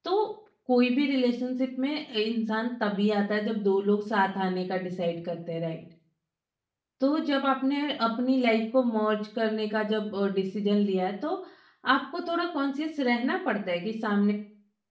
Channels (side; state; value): both; identical; correlation 1.00